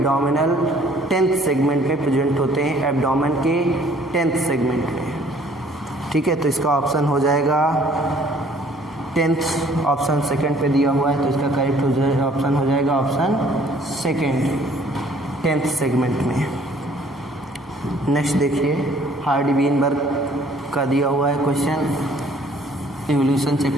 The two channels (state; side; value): normal; both; correlation 0.58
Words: 10th सेगमेंट में प्रेजेंट होते हैं, एब्डोमेन के 10th सेगमेंट में। ठीक है, तो इसका ऑप्शन हो जाएगा 10th ऑप्शन सेकंड पे दिया हुआ है, तो इसका करेक्ट ऑप्शन हो जाएगा ऑप्शन सेकंड 10th सेगमेंट में। नेक्स्ट देखिए हार्डी वीनबर्ग का दिया हुआ है क्वेश्चन इवोल्यूशन